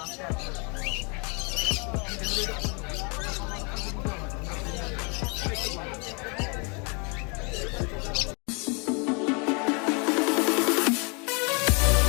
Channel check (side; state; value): right; quieter; 32.9 dB